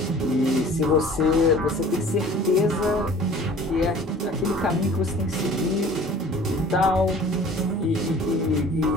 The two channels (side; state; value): both; normal; correlation 0.47